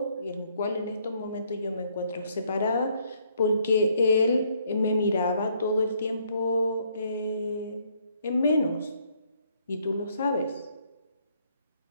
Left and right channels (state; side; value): inverted; both; correlation -0.68